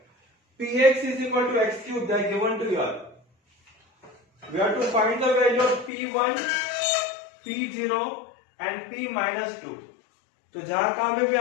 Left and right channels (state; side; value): drops out; right; at 5.9 s